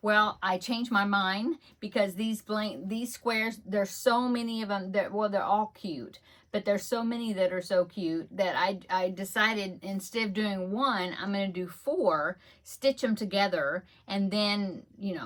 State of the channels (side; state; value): both; identical; correlation 1.00